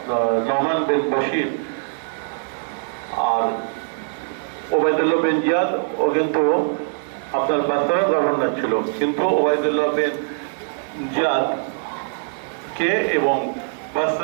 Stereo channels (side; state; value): left; silent; digital silence